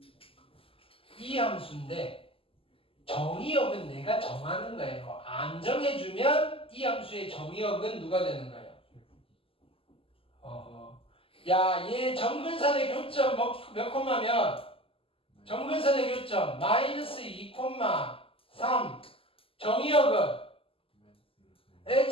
이 함수인데 정의역은 내가 정하는 거예요. 안 정해주면 이 함수의 정의역은 누가 되는 거예요? 야, 얘 정근선의 교점 몇 콤마면? 정근선의 교점 마이너스 2,3. 정의역은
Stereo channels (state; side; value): late; right; 0.26 ms